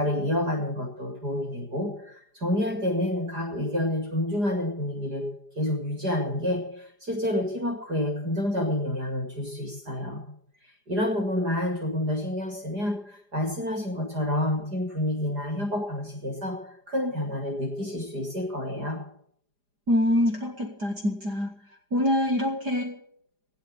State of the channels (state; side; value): late; left; 4.9 ms